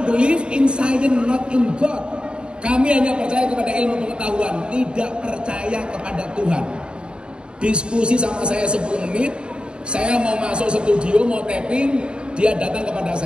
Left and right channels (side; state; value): left; late; 0.052 ms